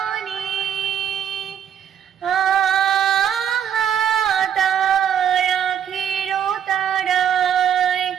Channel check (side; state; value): left; quieter; 8.9 dB